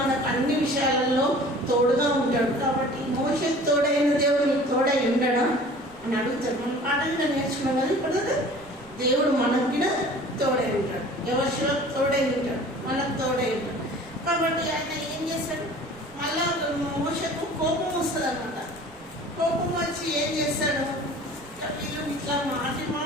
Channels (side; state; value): right; noise; rumble, 26 dB below the sound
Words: అన్ని విషయాలలో తోడుగా ఉంటాడు. కాబట్టి మోషేకు తోడైన దేవుడు నీకు తోడై ఉండడా అని అడుగుతాడు. మనం పాట కూడా నేర్చుకున్నాం కదా. ఇప్పుడు దేవుడు మనకు కూడా తోడై ఉంటాడు. ఎవరిలో తోడై ఉంటాడు, మనకు తోడై ఉంటాడు. కాబట్టి ఆయన ఏం చేస్తాడు? మళ్ళా మోషేకు కోపం వస్తుంది అన్నమాట. కోపం వచ్చి ఏం చేస్తాడు? వీళ్ళు ఇట్లా